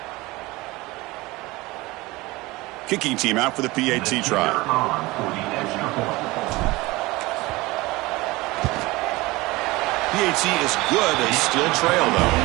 Kicking team out for the PAT try. PAT is good. They still trail, though.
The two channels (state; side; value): quieter; left; 21.4 dB